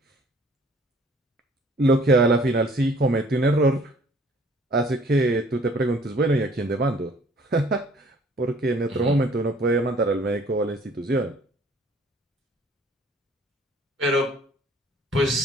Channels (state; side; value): normal; both; correlation 0.56